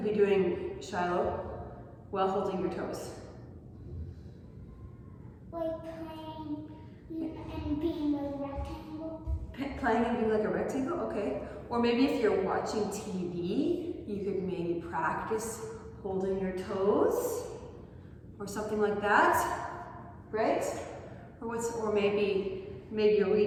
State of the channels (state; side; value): identical; both; correlation 1.00